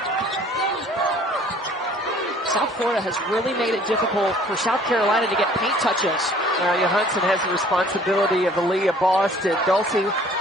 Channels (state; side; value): normal; both; correlation 0.54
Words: South Florida has really made it difficult for South Carolina to get paint touches. Now Johansson has the responsibility of Aaliyah Boston. Dulcie